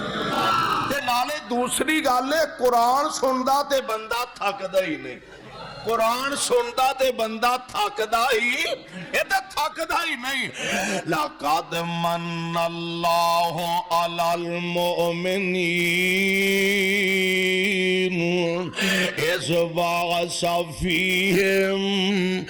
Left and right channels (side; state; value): both; identical; correlation 1.00